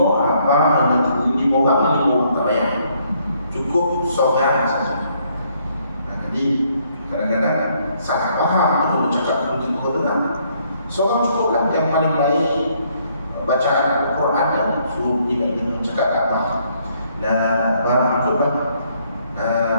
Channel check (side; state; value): both; inverted; correlation -0.69